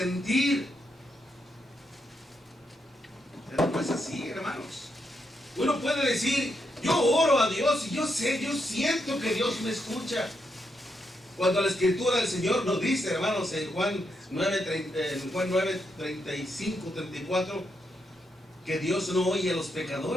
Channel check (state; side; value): normal; both; correlation 0.81